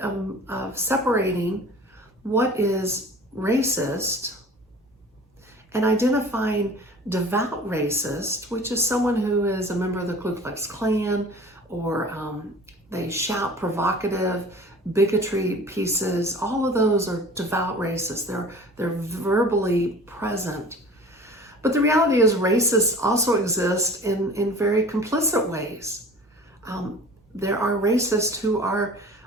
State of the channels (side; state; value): both; normal; correlation 0.43